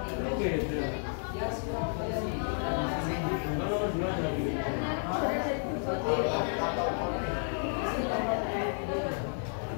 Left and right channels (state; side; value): silent; right; 57 dB below the other